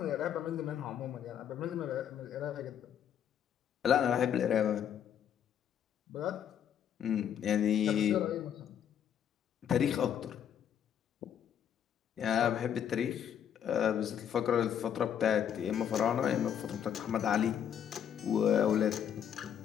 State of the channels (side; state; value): right; quieter; 9.1 dB